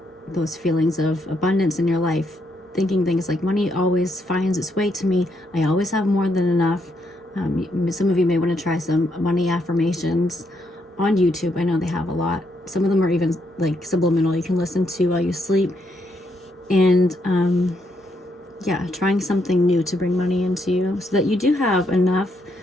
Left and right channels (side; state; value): both; normal; correlation 0.77